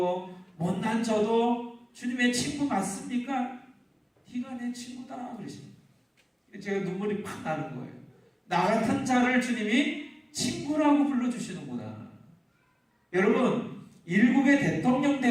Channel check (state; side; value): identical; both; correlation 1.00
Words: 못난 저도 주님의 친구 맞습니까? 네가 내 친구다 그러십니다. 제가 눈물이 팍 나는 거예요. 나 같은 자를 주님이 친구라고 불러주시는구나. 여러분, 일국의 대통령